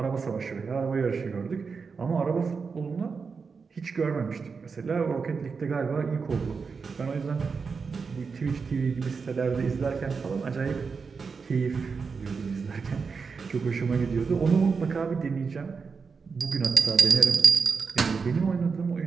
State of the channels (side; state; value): left; quieter; 5.2 dB